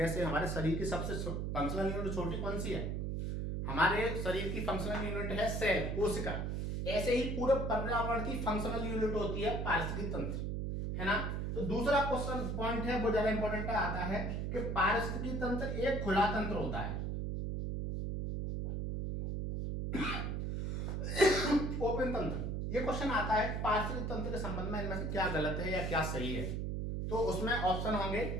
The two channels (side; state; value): right; noise; hum, 1 dB below the sound